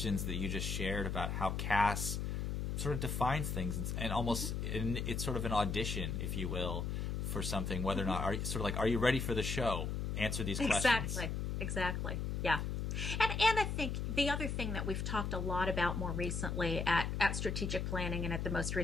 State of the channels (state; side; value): noise; left; hum, 1 dB below the sound